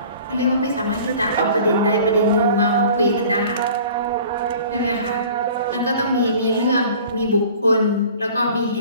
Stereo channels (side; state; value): both; inverted; correlation -0.46